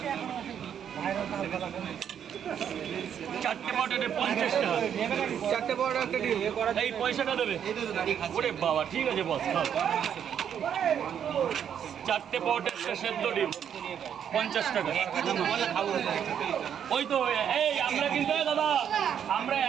চারটে পটেটে 50 টাকা। 4টে বড় একটা ডিম এই পয়সাটা দেবে। ওরে বাবা, ঠিক আছে বস, খাও। চারটে পটেটে সেদ্ধ ডিম 50 টাকা। ওই তো এই আমরা কিন্তু দাদা আমরা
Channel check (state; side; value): quieter; left; 8.7 dB